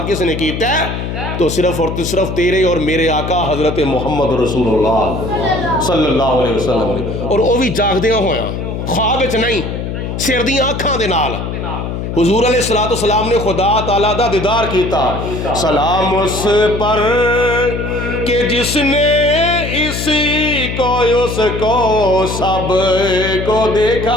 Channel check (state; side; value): noise; left; hum, 5 dB below the sound